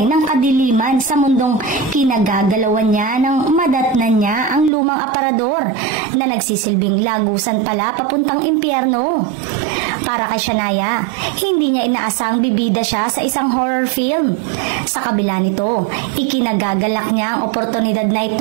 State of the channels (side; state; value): left; drops out; at 4.7 s